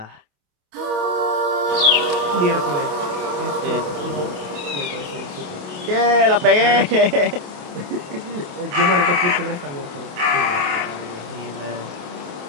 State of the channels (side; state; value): left; late; 28 ms